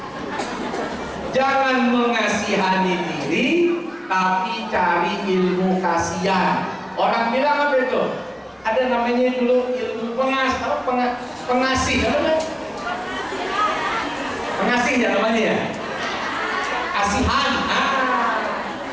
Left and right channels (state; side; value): identical; both; correlation 1.00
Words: Jangan mengasihani diri, tapi cari ilmu kasihan. Orang bilang apa itu? Ada namanya dulu ilmu pengasih, namanya? Pengasih ya namanya ya? Kasihan,